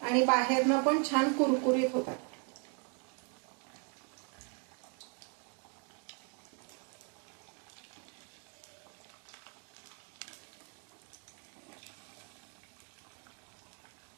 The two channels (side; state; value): left; quieter; 37.2 dB